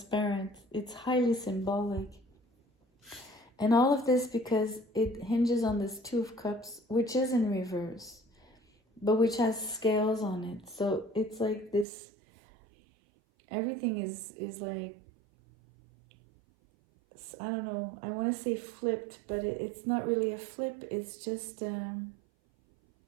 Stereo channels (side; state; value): left; drops out; at 11.9 s